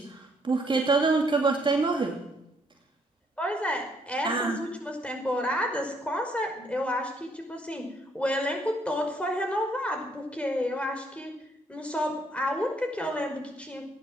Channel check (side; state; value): both; normal; correlation 0.69